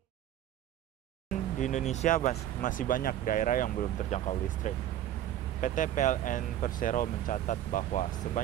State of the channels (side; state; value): left; quieter; 11.9 dB